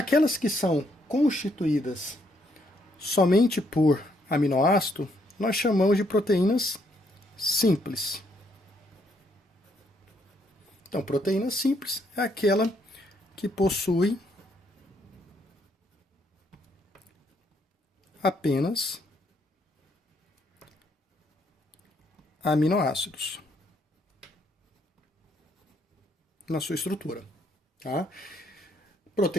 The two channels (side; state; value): both; normal; correlation 0.72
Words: que são constituídas somente por aminoácido, nós chamamos de proteínas simples. Então, proteína simples é aquela que possui apenas aminoácidos na sua estrutura. Tá?